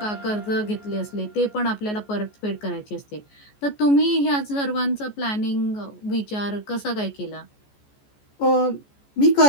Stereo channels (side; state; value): right; late; 14 ms